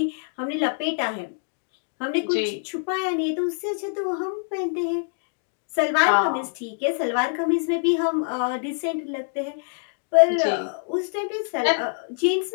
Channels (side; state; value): right; silent; digital silence